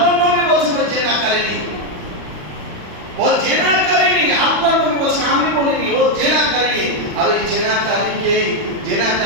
নবী বলছেন ওই জেনাকারিনী, ও জেনাকারিনী। আল্লাহর নবী বলছেন, আমি বলিনি, ও জেনাকারিনী। আর ওই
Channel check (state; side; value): late; left; 40 ms